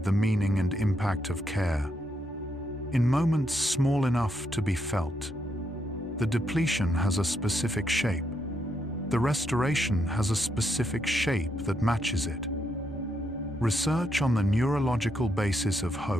the meaning and impact of care. In moments small enough to be felt, the depletion has a specific shape. The restoration has a specific shape that matches it. Research on the neurological basis of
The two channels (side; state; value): both; normal; correlation 0.78